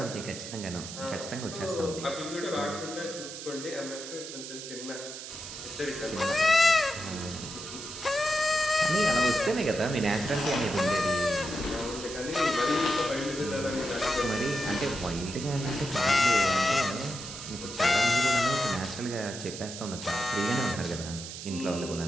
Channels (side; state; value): right; noise; hiss, 10 dB below the sound